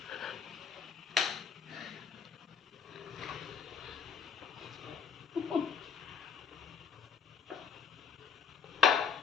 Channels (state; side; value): quieter; right; 6.8 dB